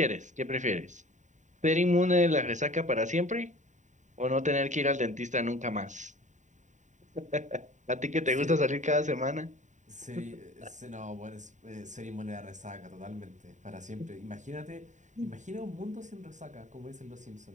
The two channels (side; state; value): left; late; 0.35 ms